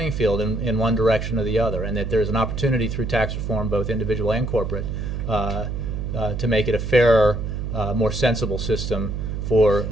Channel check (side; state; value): right; noise; hum, 4 dB below the sound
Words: field in one direction or the other, and that there's an opportunity through tax reform, both individual and corporate, to make it a fairer, more sensible system for